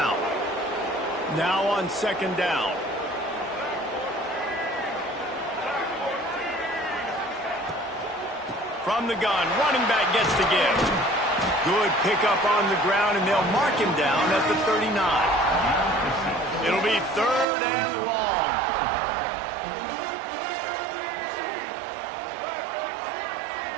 Now on second down. From the gun, running back gets the give. Good pickup on the ground, and they'll mark him down at the 39. It'll be third and long.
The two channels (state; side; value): drops out; left; at 17.4 s